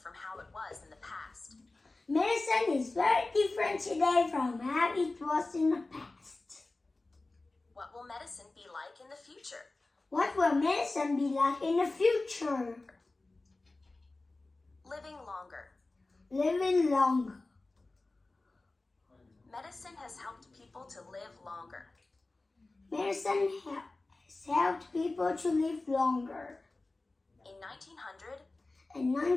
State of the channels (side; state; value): right; quieter; 3.2 dB